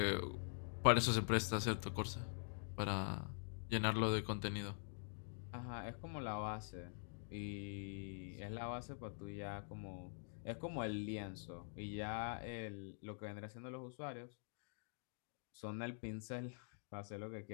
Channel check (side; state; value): right; silent; digital silence